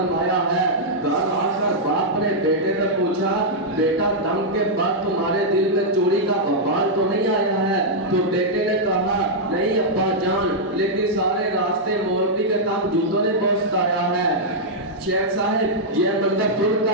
ہے۔ گھر آ کر باپ نے بیٹے سے پوچھا، بیٹا دم کے بعد تمہارے دل میں چوری کا بوال تو نہیں آیا ہے؟ تو بیٹے نے کہا نہیں ابا جان، لیکن سارے راستے مولوی کے کام جوتوں نے پہنچایا ہے۔ شیخ صاحب یہ منظر سن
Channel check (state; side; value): normal; both; correlation -0.06